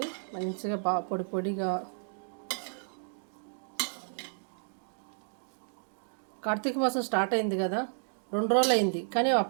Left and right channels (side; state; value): left; silent; digital silence